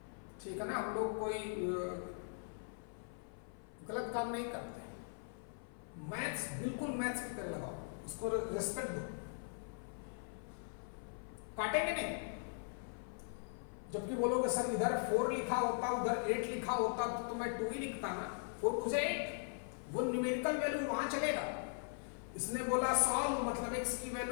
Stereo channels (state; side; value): silent; right; 51 dB below the other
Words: ठीक है ना। हम लोग कोई गलत काम नहीं करते। मैथ्स बिल्कुल मैथ्स की तरह लगाओ, उसको रिस्पेक्ट दो। काटेंगे नहीं। जबकि बोलोगे सर इधर 4 लिखा होता, उधर 8 लिखा होता तो मैं 2 ही लिखता ना, 4 मुझे 8, वो न्यूमेरिकल वैल्यू वहां चलेगा। इसने बोला सॉल्व मतलब x की